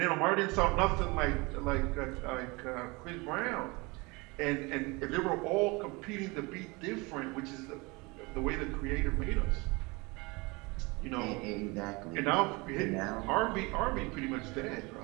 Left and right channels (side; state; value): left; quieter; 25.9 dB